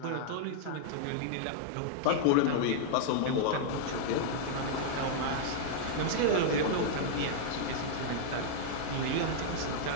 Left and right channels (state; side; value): different; both; correlation -0.01